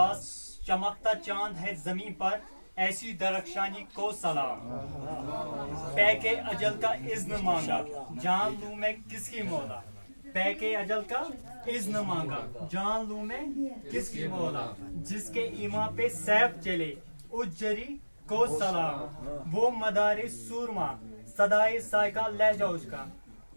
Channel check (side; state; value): both; inverted; correlation -1.00